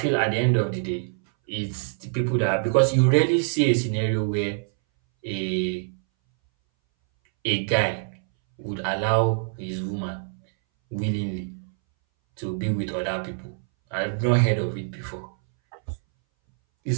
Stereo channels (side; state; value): left; silent; 61 dB below the other